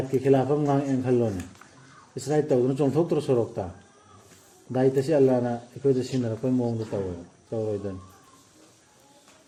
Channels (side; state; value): both; identical; correlation 1.00